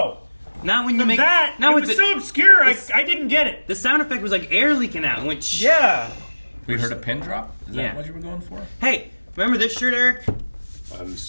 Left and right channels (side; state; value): both; inverted; correlation -1.00